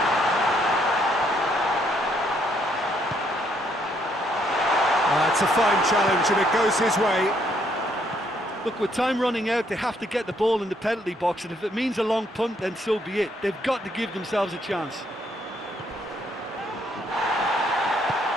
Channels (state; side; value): normal; both; correlation 0.70